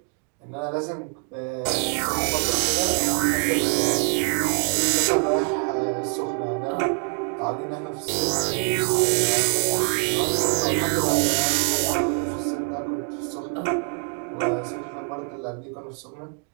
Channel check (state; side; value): quieter; left; 38.0 dB